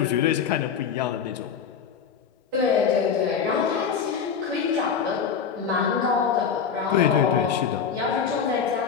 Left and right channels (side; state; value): right; quieter; 6.9 dB